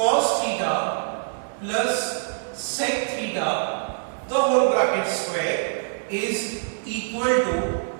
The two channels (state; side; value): silent; left; digital silence